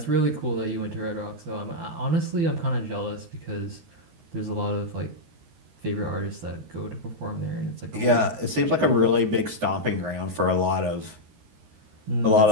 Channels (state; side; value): late; left; 13 ms